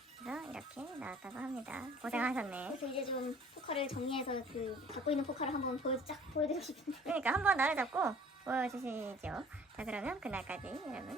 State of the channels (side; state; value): both; normal; correlation 0.52